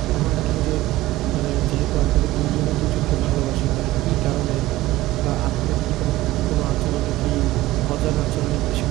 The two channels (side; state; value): left; quieter; 17.1 dB